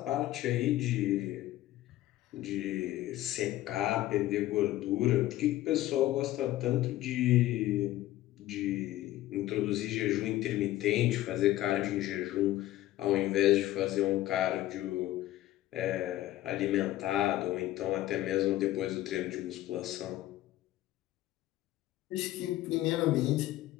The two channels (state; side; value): quieter; right; 15.2 dB